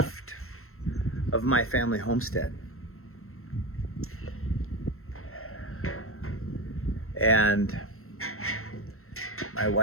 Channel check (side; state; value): right; late; 0.62 ms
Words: of my family homestead. And my